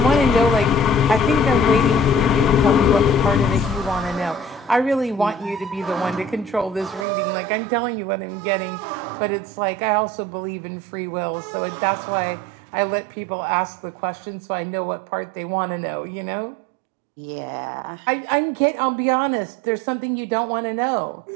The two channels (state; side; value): drops out; left; at 7.1 s